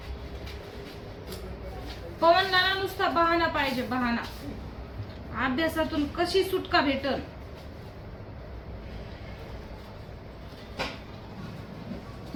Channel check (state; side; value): identical; both; correlation 1.00